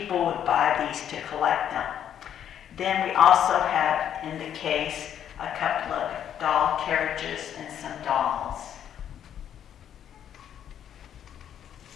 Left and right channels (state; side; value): quieter; right; 9.7 dB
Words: would buy these to collect them. Then we also have in the case a couple of doll carriages and some dolls.